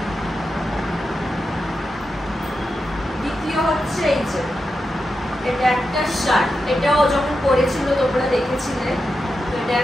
দ্বিতীয় হচ্ছে এই যে এটা একটা শার্ট, এটাও যখন পরেছিল তোমরা দেখেছিলে। তো এটা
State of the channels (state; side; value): normal; both; correlation 0.89